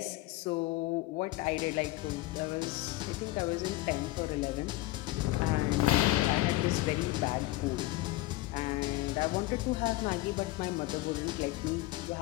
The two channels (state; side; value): quieter; right; 18.3 dB